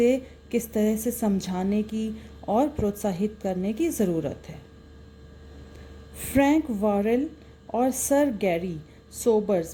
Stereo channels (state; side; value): identical; both; correlation 1.00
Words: किस तरह से समझाने की और प्रोत्साहित करने की ज़रूरत है। फ्रैंक वॉरेल और सर गैरी